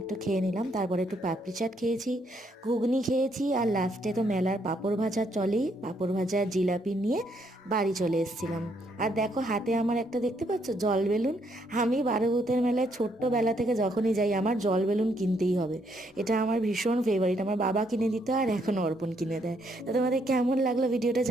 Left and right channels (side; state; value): both; normal; correlation 0.73